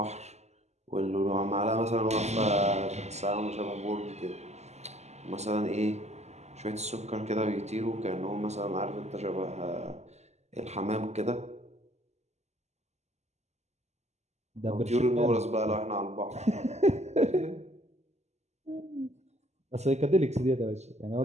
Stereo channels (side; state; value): left; late; 0.33 ms